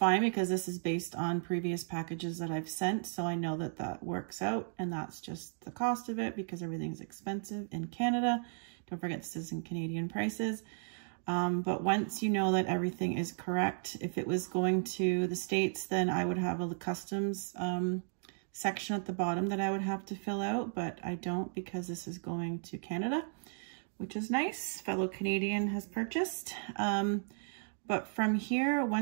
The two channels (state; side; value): silent; left; 55 dB below the other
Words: because this is based on previous packages that I've sent. So I know that that works out, and that's just the cost of it because everything's expensive in Canada. Don't forget this is in Canadian prices. But once you know that everything is correct, if it was going to the States, then I would have a customs section at the bottom that I would have to fill out, but I don't because this is going to Canada, which is nice. Fellow Canadian has purchased. But from here,